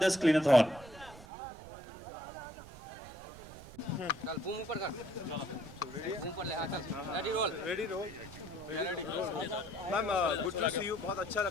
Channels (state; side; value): noise; right; rumble, 17 dB below the sound